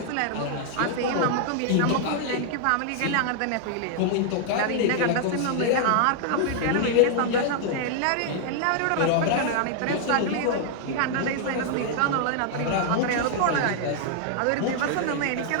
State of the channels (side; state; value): both; different; correlation 0.00